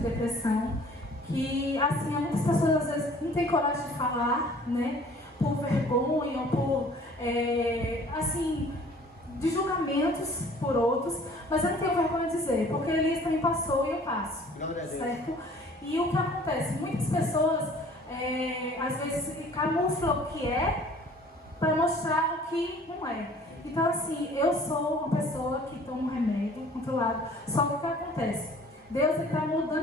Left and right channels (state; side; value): normal; both; correlation 0.52